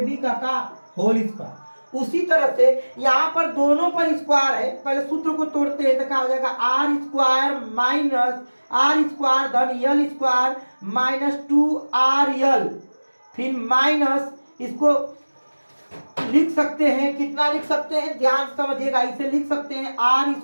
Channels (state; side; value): inverted; both; correlation -1.00